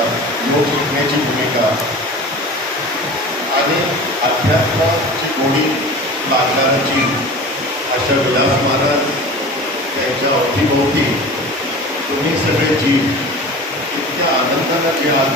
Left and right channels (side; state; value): both; normal; correlation 0.36